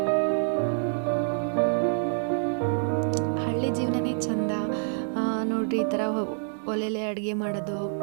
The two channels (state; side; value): silent; left; digital silence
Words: ಹಳ್ಳಿ ಜೀವನನೇ ಚಂದ ನೋಡ್ರಿ. ಈ ಥರ ಒಲೆಲೆ ಅಡುಗೆ ಮಾಡೋದು,